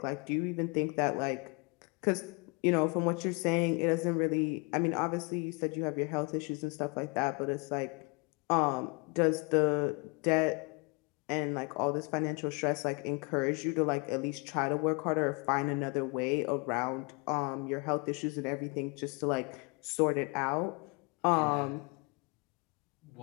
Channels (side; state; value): right; quieter; 31.1 dB